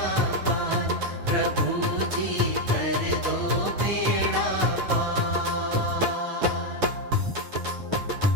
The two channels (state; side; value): late; left; 9.4 ms